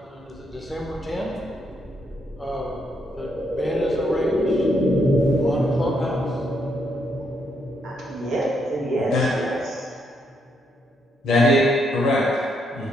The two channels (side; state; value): both; normal; correlation 0.76